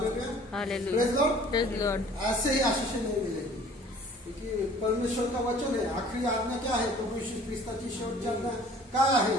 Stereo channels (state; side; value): normal; both; correlation 0.51